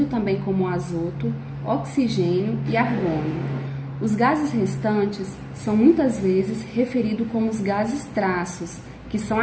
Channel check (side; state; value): both; identical; correlation 1.00